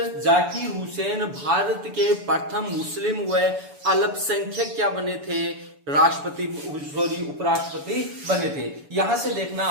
जाकिर हुसैन भारत के प्रथम मुस्लिम व अल्पसंख्यक क्या बने थे, राष्ट्रपति सॉरी उपराष्ट्रपति बने थे। यहां से देखना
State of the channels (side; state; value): left; late; 7.0 ms